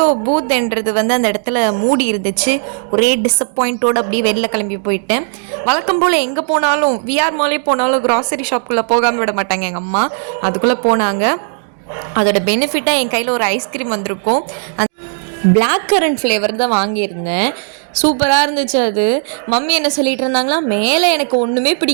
பூத்ன்றது அந்த இடத்துல மூடி இருந்துச்சு. ஒரே டிஸப்பாயிண்ட்டோடு அப்படியே வெளில கிளம்பி போயிட்டேன். வழக்கம் போல் எங்கே போனாலும் விஆர் மாலே போனாலும் க்ராசரி ஷாப்புக்குள்ளே போகாமல் விட மாட்டாங்க எங்கள் அம்மா. அதுக்குள்ளே போனாங்க. அதோட பெனிஃபிட்டாக என் கையில் ஒரு ஐஸ்கிரீம் வந்திருக்கும். அந்த பிளாக் கரண்ட் ஃப்ளேவர் தான் வாங்கியிருந்தேன். சூப்பராக இருந்துச்சு அது. மம்மி என்ன சொல்லிட்டு இருந்தாங்களா, மேலே எனக்கு ஒன்றுமே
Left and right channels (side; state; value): left; silent; 56 dB below the other